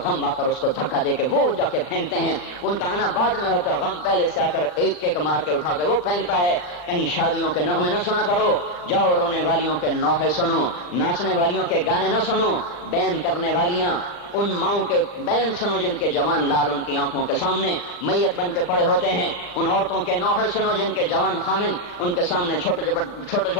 غم آ کر اس کو دھکا دے کے وہ جا کے پھینکتے ہیں۔ ان کا آنا بعد میں ہوتا ہے، غم پہلے سے آ کر ایک مار کے اٹھا کے وہ پھینکتا ہے۔ کہیں شادیوں کے نغمے نہ سنا کرو، جاؤ رونے والیوں کے نوحے سنو، ناچنے والیوں کے گانے نہ سنو، بین کرنے والیاں ان ماؤں کے بین سنو جن کے جوان لال ان کی آنکھوں کے سامنے میت بن کے پڑے ہوتے ہیں، ان عورتوں کے نوحے سنو جن کے جوان خامن ان کے سامنے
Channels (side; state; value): right; late; 40 ms